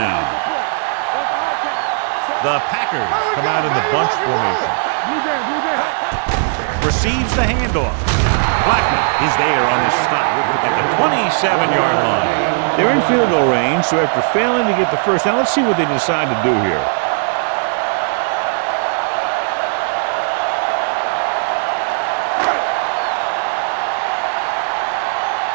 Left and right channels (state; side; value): silent; left; 68 dB below the other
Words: The Packers come out in the bunch formation. Receives the handoff. Blackman is there on his stop at the 27-yard line. They're in field goal range, so after failing to get the first down, let's see what they decide to do here.